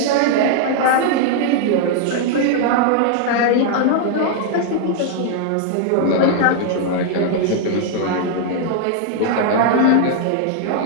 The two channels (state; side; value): different; both; correlation 0.00